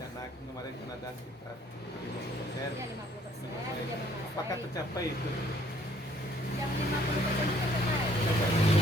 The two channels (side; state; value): both; normal; correlation 0.63